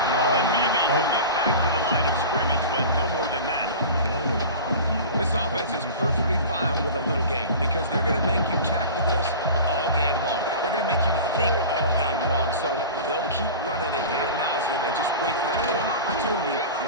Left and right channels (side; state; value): both; inverted; correlation -0.34